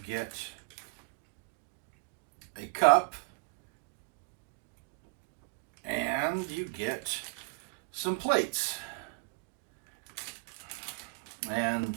a cup, and you get some plates. And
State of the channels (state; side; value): quieter; left; 32.5 dB